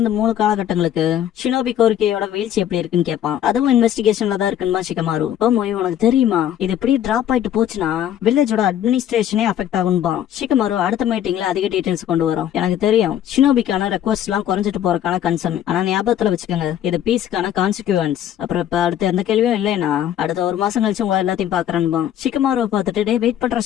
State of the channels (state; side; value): quieter; right; 10.7 dB